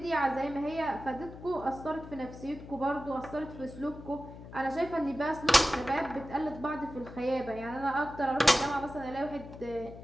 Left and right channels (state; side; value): noise; left; hum, 14 dB below the sound